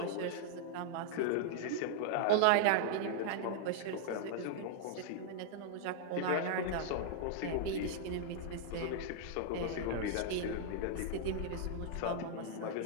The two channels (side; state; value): both; different; correlation -0.01